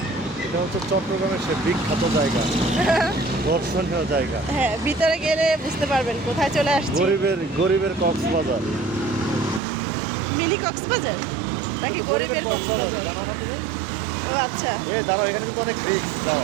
এটা হচ্ছে চট্টগ্রামের সে বিখ্যাত জায়গা, দর্শনীয় জায়গা। হ্যাঁ, ভিতরে গেলে বুঝতে পারবেন কোথায় চলে আসছি। গরিবের কক্সবাজার। মিনি কক্সবাজার নাকি গরিবের কক্সবাজার? ও আচ্ছা। এই দাঁড়াও, এখানে কিন্তু অনেক রিস্ক।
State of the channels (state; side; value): drops out; left; at 9.6 s